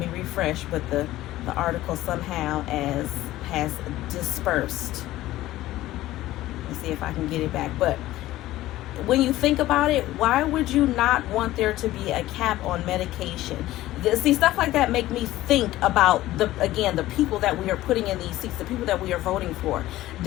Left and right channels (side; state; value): right; quieter; 15.7 dB